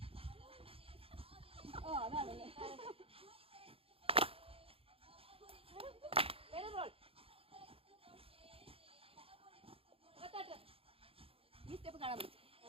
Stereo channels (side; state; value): left; late; 0.27 ms